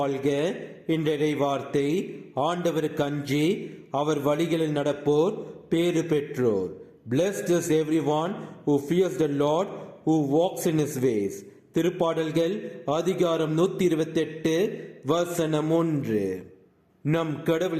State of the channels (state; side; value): identical; both; correlation 1.00